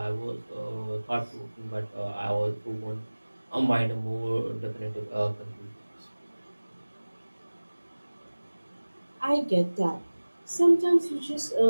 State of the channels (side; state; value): both; inverted; correlation -1.00